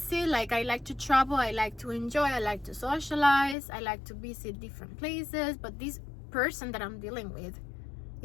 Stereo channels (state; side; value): drops out; right; at 3.6 s